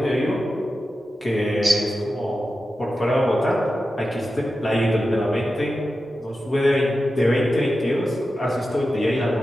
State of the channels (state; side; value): normal; both; correlation 0.92